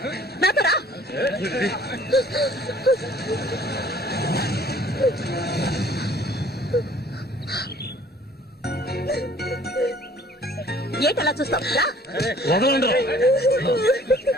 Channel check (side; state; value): both; normal; correlation 0.55